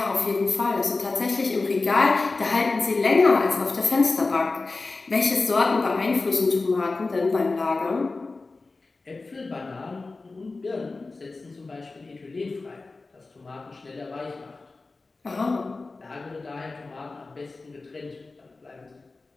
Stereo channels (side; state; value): right; quieter; 3.6 dB